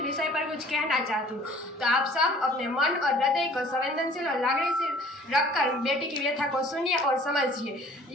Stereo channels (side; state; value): both; normal; correlation 0.52